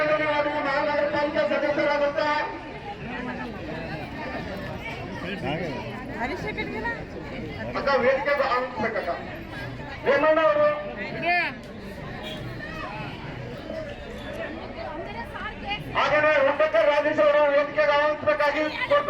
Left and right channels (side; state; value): both; identical; correlation 1.00